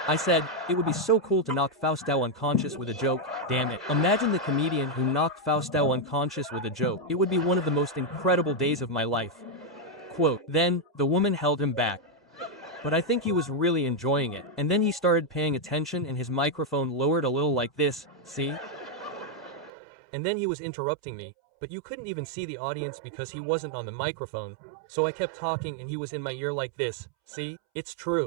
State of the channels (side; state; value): left; drops out; at 19.7 s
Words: I said, it would be so cool to knock Fausto unconscious with a joke, damn it. Imagine the comedian who knocked Fausto unconscious with a joke. It would be one of the most incredible days of my life. Quote, then, the woman held him back. But I think he was really enjoying it. And then he started paying attention and his microphone lowered a little like this, see? And then he was interrupting me, but you couldn't even see the audience because he wasn't on the microphone. So I kept talking and he was in my ear like this, see? It's